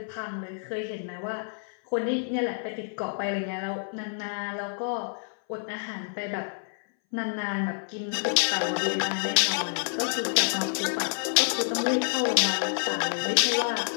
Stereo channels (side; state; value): right; silent; 59 dB below the other